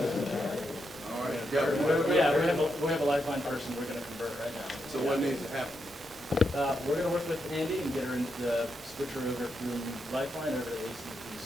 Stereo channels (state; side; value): normal; both; correlation 0.83